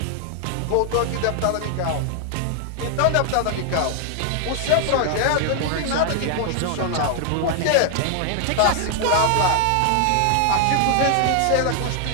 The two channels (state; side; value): different; both; correlation 0.00